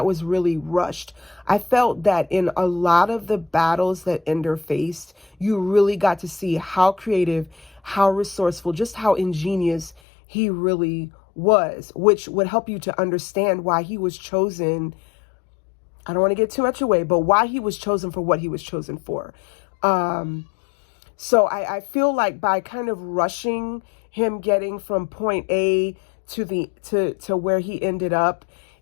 was really rushed. I felt that in a lot of the battles that Ender faced, you really got to see how creative, how resourceful, just how ingenious he really was, which would help you to understand why he was chosen. I don't want to get too much away, but why he was chosen for what he was chosen for. So I feel like by kind of rushing him getting from point A to where he ended up,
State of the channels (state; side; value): drops out; right; at 10.0 s